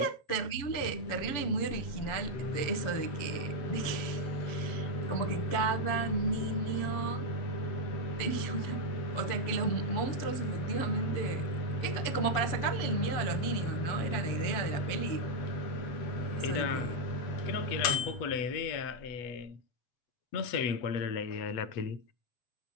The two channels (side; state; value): right; late; 7.0 ms